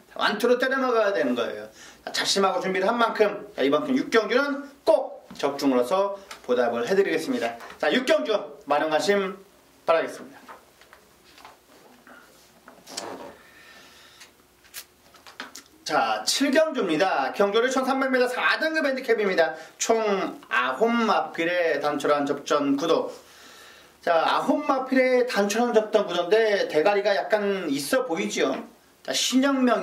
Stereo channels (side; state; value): both; identical; correlation 1.00